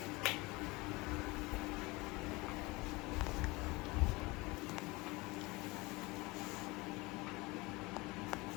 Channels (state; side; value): quieter; right; 23.4 dB